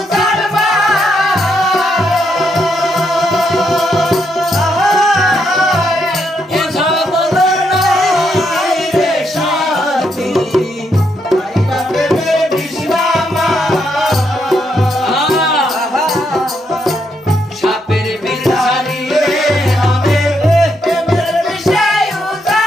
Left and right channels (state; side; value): normal; both; correlation 0.78